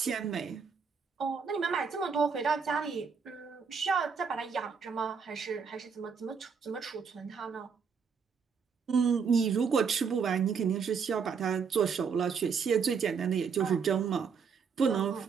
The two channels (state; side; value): quieter; left; 6.0 dB